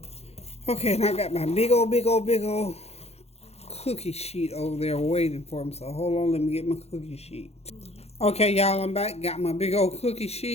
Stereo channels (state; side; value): late; right; 0.30 ms